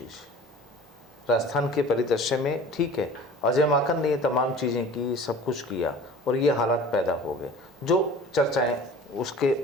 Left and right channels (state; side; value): normal; both; correlation 0.43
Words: राजस्थान के परिदृश्य में ठीक है, अजय माकन ने ये तमाम चीज़ें की, सब कुछ किया और ये हालात पैदा हो गए जो चर्चाएं उसके